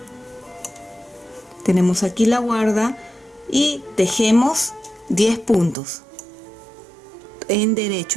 tenemos aquí la guarda y tejemos 10 puntos en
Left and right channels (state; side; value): drops out; left; at 5.8 s